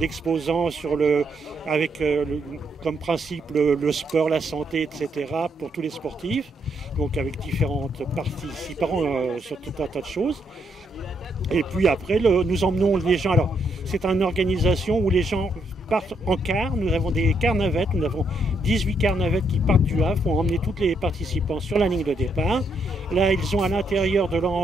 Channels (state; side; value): normal; both; correlation 0.76